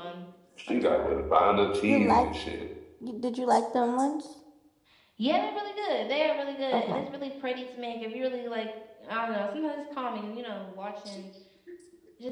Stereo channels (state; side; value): identical; both; correlation 1.00